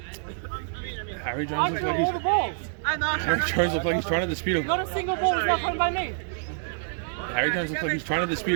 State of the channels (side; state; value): left; silent; 60 dB below the other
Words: Harry Jones looks like he's trying to dispute Not a single ball was not thrown by me. Harry Jones looks like he's trying to